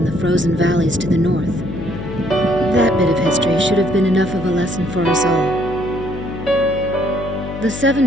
the frozen valleys to the north. That bit of history should have been enough of a lesson for us all. The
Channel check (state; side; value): noise; left; hum, 9 dB below the sound